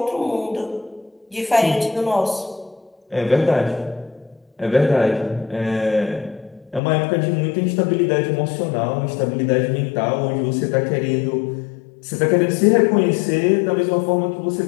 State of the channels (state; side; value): drops out; right; at 6.8 s